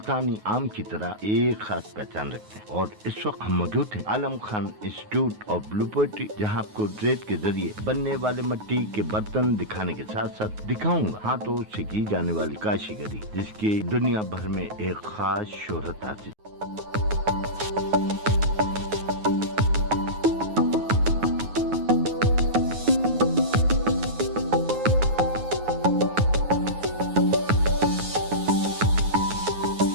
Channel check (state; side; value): late; left; 9.4 ms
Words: آم کی طرح ایک خاص پہچان رکھتے ہیں۔ اور اس وقت ہم موجود ہیں Alam Khan institute of blue pottery, جہاں آپ کو ریت کے ذریعے بننے والے مٹی کے برتن دکھانے کے ساتھ ساتھ دکھاؤں گا ہاتھوں سے کی جانے والی کاشی گری، جس کی دنیا بھر میں ایک خاص شہرت حاصل۔